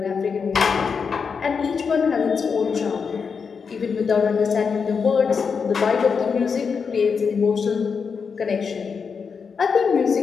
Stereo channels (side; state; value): right; quieter; 5.8 dB